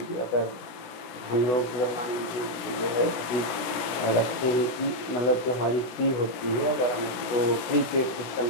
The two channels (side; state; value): right; late; 17 ms